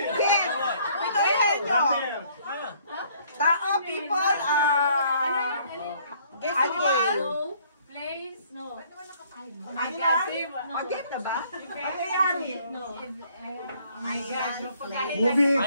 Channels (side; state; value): both; inverted; correlation -0.62